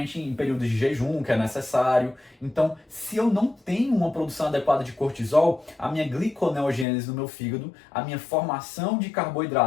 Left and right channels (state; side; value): drops out; right; at 6.9 s